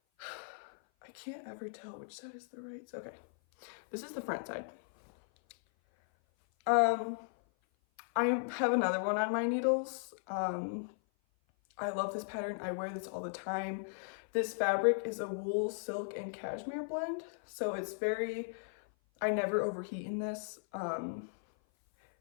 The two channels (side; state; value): right; silent; 53 dB below the other